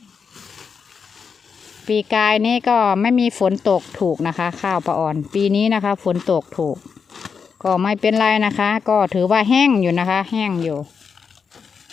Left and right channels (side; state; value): right; quieter; 6.0 dB